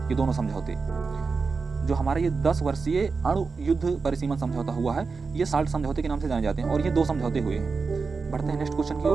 ये दोनों समझौते जो हमारे ये 10 वर्षीय अणु युद्ध पर सीमन समझौता हुआ है, ये साल्ट समझौते के नाम से जाने जाते हैं, और ये दो समझौते हुए हैं। बढ़ते हैं नेक्स्ट क्वेश्चन की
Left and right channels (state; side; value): quieter; left; 4.6 dB